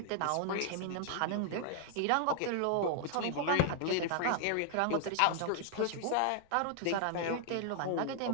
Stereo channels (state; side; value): different; both; correlation -0.01